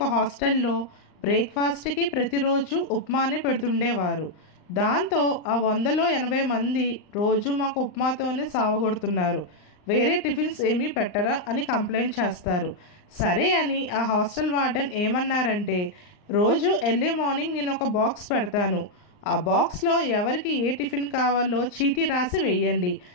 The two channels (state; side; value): late; right; 39 ms